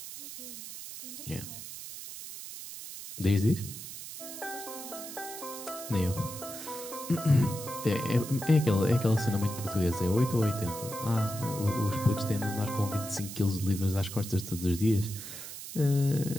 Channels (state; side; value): noise; right; hiss, 10 dB below the sound